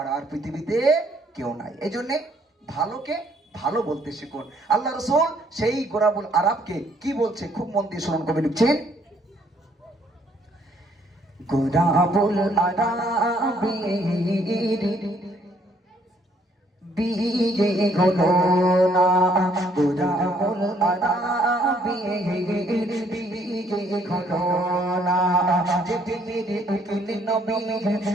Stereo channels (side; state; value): both; normal; correlation 0.66